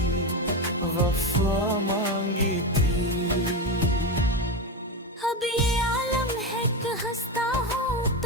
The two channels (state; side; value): normal; both; correlation 0.15